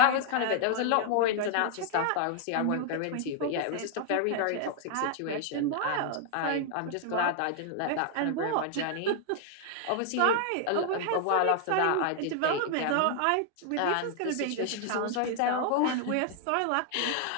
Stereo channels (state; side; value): different; both; correlation 0.00